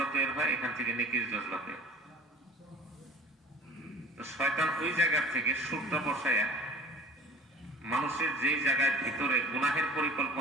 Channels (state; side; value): normal; both; correlation 0.44